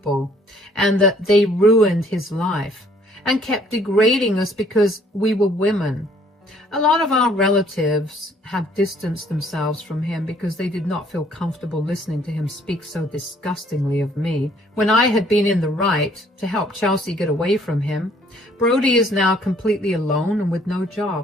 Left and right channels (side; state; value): both; normal; correlation 0.61